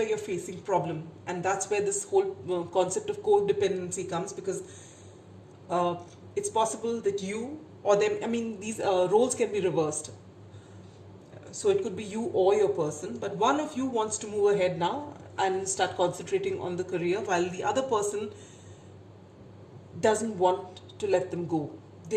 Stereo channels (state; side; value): identical; both; correlation 1.00